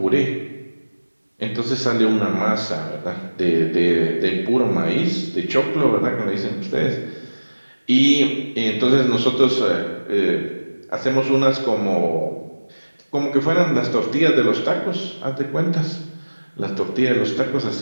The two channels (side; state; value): both; inverted; correlation -1.00